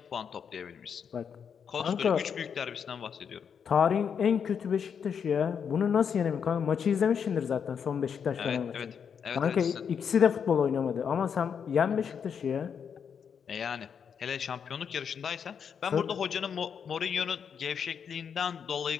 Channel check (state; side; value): quieter; right; 7.2 dB